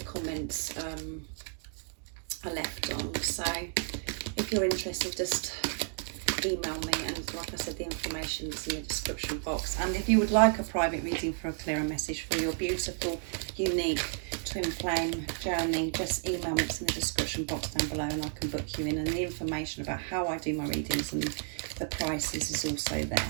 comments are left on. So if you're interested, just email me, and like I said, the information is in the description box. And if you would like a private reading for a clearer message for your beautiful, unique twin flame journey, just email me. It's in the description box down below, and I can book you in, and the information about how I do my readings and the prices is also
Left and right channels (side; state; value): left; silent; 56 dB below the other